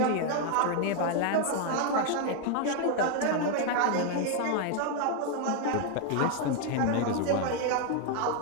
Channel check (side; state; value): both; different; correlation 0.01